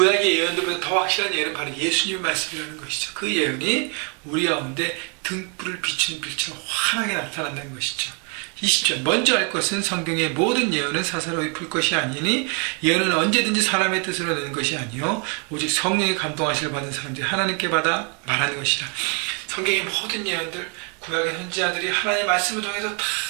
예언들보다 더 확실한 예언은 바로 예수님의 말씀이라는 것이죠. 그 예언이 우리 가운데 등불을 비추는 빛처럼 환하게 나타난다는 것이죠. 20절 먼저 알 것은 성경의 모든 예언은 사사로이 풀 것이 아니니 예언은 언제든지 사람의 뜻으로 내는 것이 아니요 오직 성령의 감동하심을 받은 사람들이 하나님께 받아 말하는 것이라. 성경의 모든 예언들 구약의 선지자들이 하나님의 말씀을 통해서 다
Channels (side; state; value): left; quieter; 36.6 dB